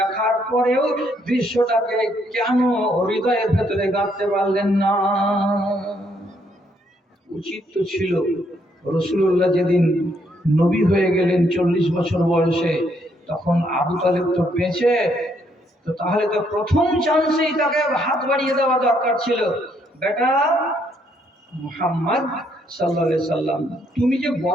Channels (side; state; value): both; normal; correlation 0.71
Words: পরেও দৃশ্যটাকে কেন হৃদয়ের ভেতরে গাঁথতে পারলেন না? উচিত তো ছিল রাসূলুল্লাহ যেদিন নবী হয়ে গেলেন 40 বছর বয়সে, তখন আবু তালেব তো বেঁচে, তো তাহলে তো প্রথম চান্সেই তাকে হাত বাড়িয়ে দেওয়া দরকার ছিল। বেটা মুহাম্মদ সাল্লাল্লাহু আলাইহি সাল্লাম, তুমি যে